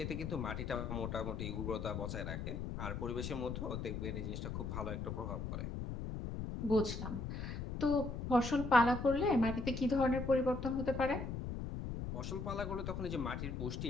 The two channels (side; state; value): left; noise; rumble, 4 dB below the sound